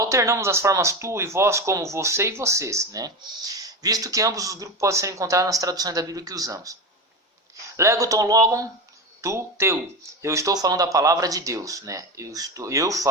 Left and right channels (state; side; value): normal; both; correlation 0.21